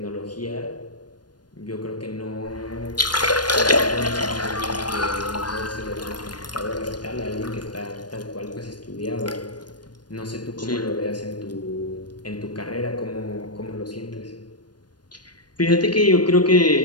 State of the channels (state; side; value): late; right; 0.70 ms